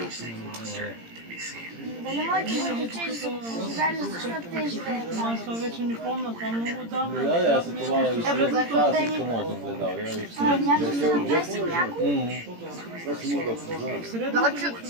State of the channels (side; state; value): left; late; 17 ms